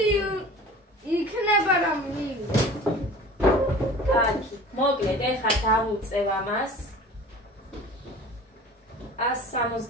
იქნება რომ მივიდე. კარგი, მოკლედ ეხლა დავუწევ ამას.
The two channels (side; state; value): both; normal; correlation 0.42